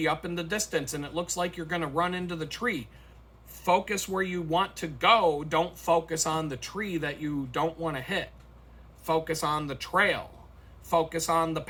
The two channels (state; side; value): identical; both; correlation 1.00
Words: up in the distance and it looks like you're going to run into the tree, focus where you want to go. Don't focus on the tree that you don't want to hit. Focus on the trail. Focus on the